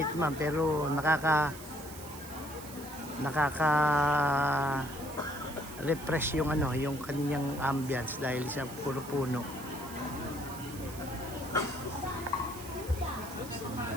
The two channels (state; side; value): noise; right; hiss, 15 dB below the sound